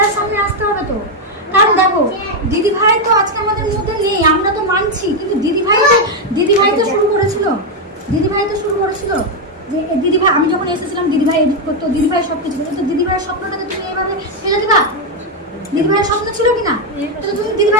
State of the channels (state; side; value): normal; both; correlation 0.03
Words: সামনে আসতে হবে তো। কারণ দেখো দিদিভাই তো আজকে আমাদের মধ্যে নেই, আমরা তো মানছি, কিন্তু দিদিভাই তো শুরু করেছিল। যে দিদিভাই, আমি যখন এসেছিলাম দিদিভাই এডিট করতো, দিদিভাই সবকিছু করতো। তো দিদিভাইয়ের স্বপ্নটাকে তুমি এইভাবে ফেলে দিবা? দিদিভাইয়ের স্বপ্ন ছিল কিনা? তো তুমি